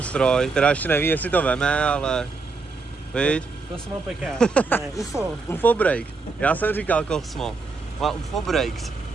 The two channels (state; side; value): quieter; left; 4.1 dB